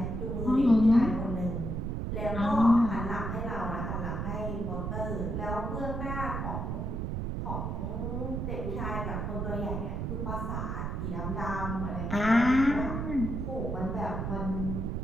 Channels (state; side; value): noise; right; rumble, 2 dB below the sound